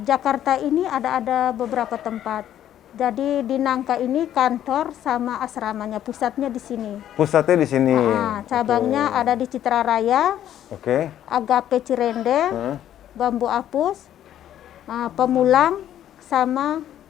Jakarta ini ada beberapa tempat. Jadi di Nangka ini kantor sama asramanya, pusatnya di sini. Pusatnya di sini. Cabangnya ada di Citra Raya, Oke. Agape Cirende, Bambu Apus, Pemulang, sama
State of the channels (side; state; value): right; quieter; 11.2 dB